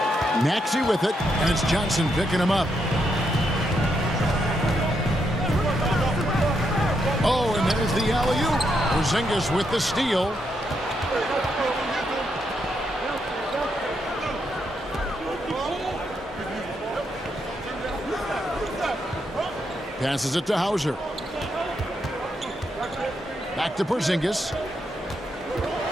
Maxey with it, and it's Johnson picking him up. Oh, and there's the alley-oop. Porzingis with the steal. Passes it to Hauser. Back to Porzingis.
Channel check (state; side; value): normal; both; correlation 0.79